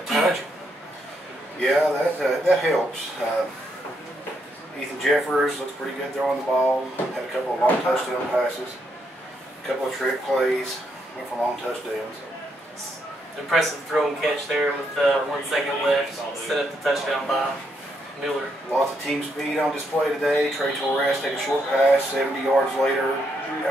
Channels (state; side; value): normal; both; correlation 0.77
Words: touch him. Yeah, that helps. Ethan Jeffers looks pretty good throwing the ball. Had a couple of long touchdown passes, a couple of trick plays, went for long touchdowns. Impressive throw and catch there with 1 second left. Set up the touchdown by Miller. Lots of team speed on display today. Trey Torres take a short pass, 70 yards later,